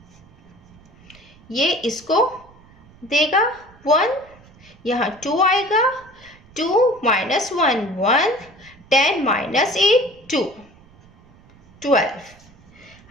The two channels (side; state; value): right; noise; rumble, 26 dB below the sound